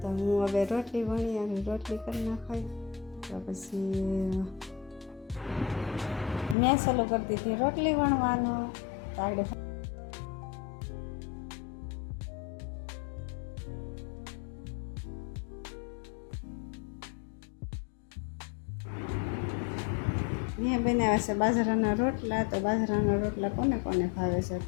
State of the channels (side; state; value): right; drops out; at 6.6 s